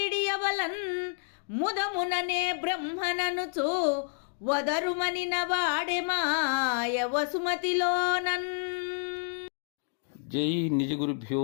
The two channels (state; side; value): silent; right; digital silence